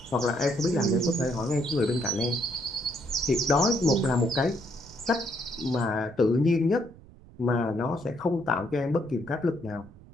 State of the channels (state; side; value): noise; right; rumble, 22 dB below the sound